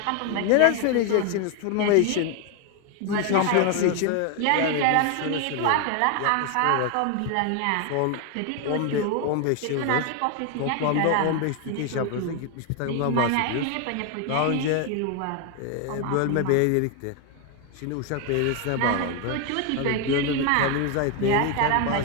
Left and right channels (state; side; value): different; both; correlation 0.01